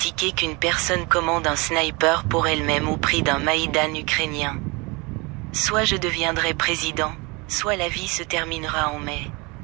qu'une personne commande un sniper pour elle-même au prix d'un Maïdan ukrainien. Soit je deviendrai président, soit la vie se terminera en mai.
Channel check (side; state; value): left; quieter; 27.1 dB